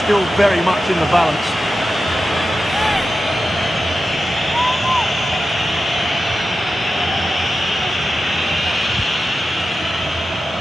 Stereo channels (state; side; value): normal; both; correlation 0.91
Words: still very much in the balance.